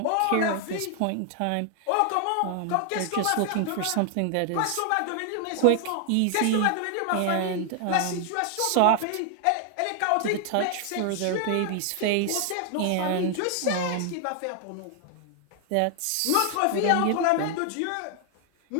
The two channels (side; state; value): both; different; correlation 0.00